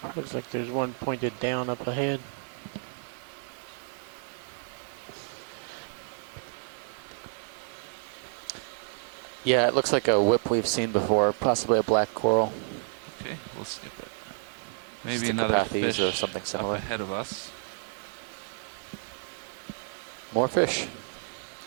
Looks like there's one pointed down up ahead. Yeah, it looks like a whip we've seen before, possibly a black coral. Okay, we'll skip it. Maybe another Sticopathes fish or something similar. up ahead of us. More fish.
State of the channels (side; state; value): left; silent; digital silence